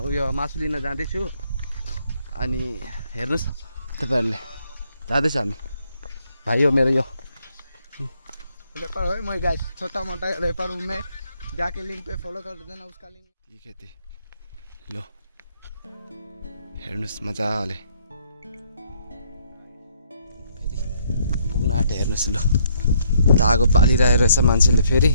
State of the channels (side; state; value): both; inverted; correlation -0.69